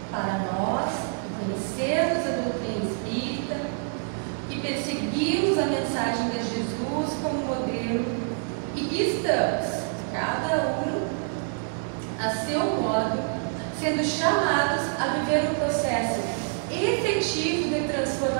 para nós conhecermos a doutrina espírita e perseguirmos a mensagem de Jesus como modelo e que estamos, cada um a seu modo, sendo chamados a viver um processo efetivo de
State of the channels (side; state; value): left; silent; 60 dB below the other